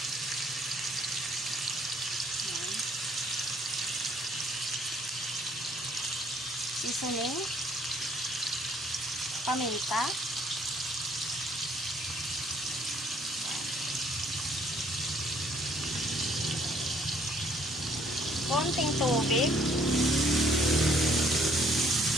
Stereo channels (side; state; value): both; normal; correlation 0.63